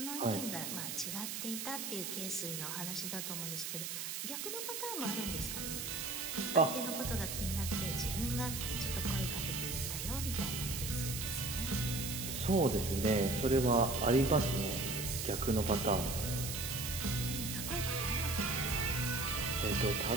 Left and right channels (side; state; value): right; noise; hiss, 4 dB below the sound